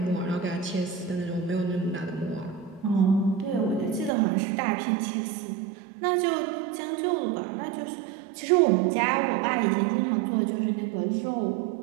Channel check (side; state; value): left; drops out; at 4.1 s